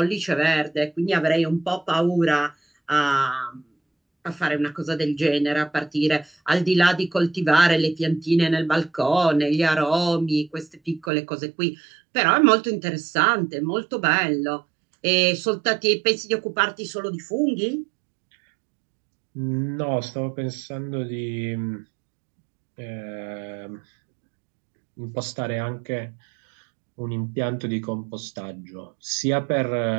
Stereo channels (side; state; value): left; drops out; at 11.1 s